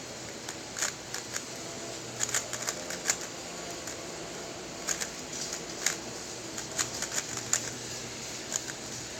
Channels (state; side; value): identical; both; correlation 1.00